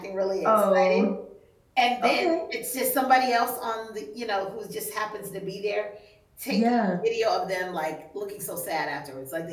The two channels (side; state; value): both; identical; correlation 1.00